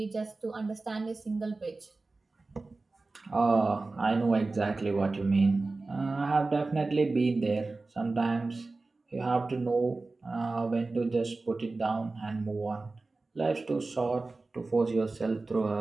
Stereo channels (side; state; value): left; quieter; 3.5 dB